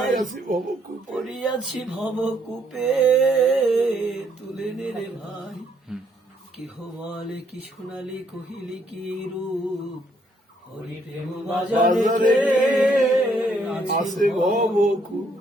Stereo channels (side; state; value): both; normal; correlation 0.70